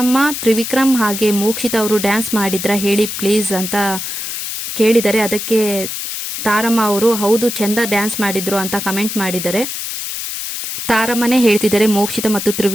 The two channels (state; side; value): noise; left; hiss, 5 dB below the sound